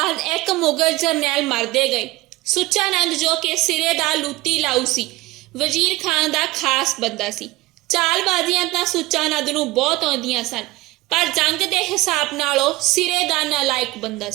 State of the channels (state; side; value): quieter; left; 20.1 dB